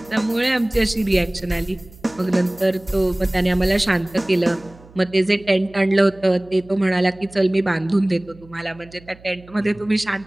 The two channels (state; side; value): noise; right; hum, 24 dB below the sound